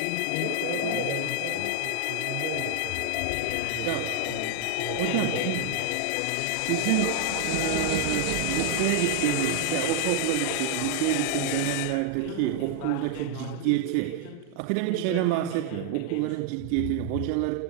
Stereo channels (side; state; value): both; different; correlation 0.00